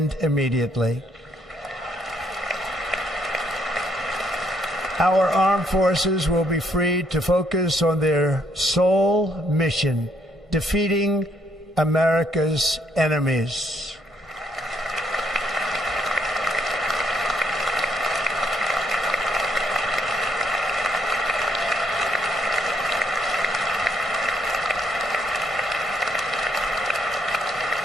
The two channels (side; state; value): both; normal; correlation 0.71